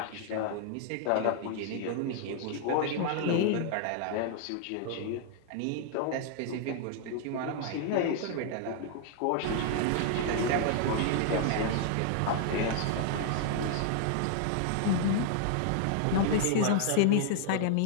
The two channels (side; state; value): both; different; correlation -0.01